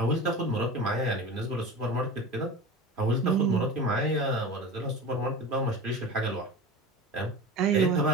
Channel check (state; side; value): normal; both; correlation 0.32